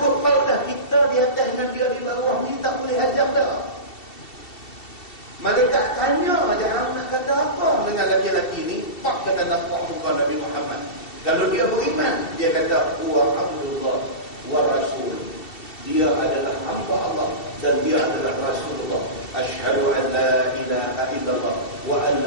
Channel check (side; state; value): right; late; 2.7 ms